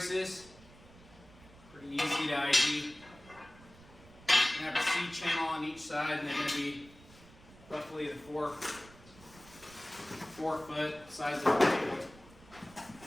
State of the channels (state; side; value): noise; right; rumble, 22 dB below the sound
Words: Pretty easy to ID. You have a C channel on each side, and they're going to be roughly the 4 foot size of the table.